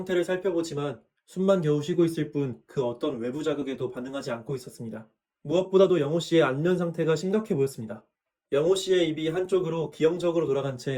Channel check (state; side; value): identical; both; correlation 1.00